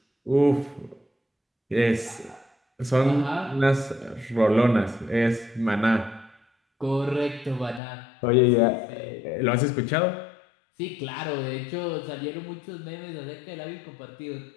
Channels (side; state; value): right; drops out; at 7.8 s